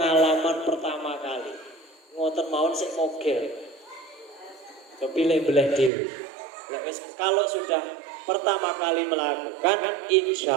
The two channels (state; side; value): drops out; left; at 5.9 s